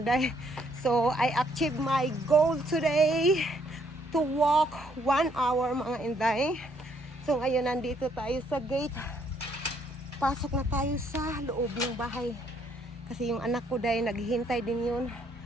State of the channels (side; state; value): both; normal; correlation 0.69